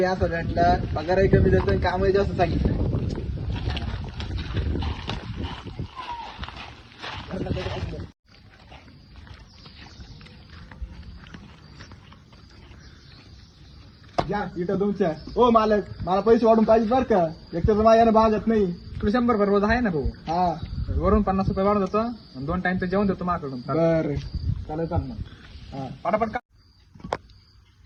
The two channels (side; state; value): both; identical; correlation 1.00